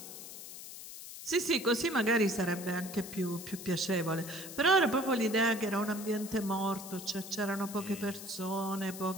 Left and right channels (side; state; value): left; noise; hiss, 12 dB below the sound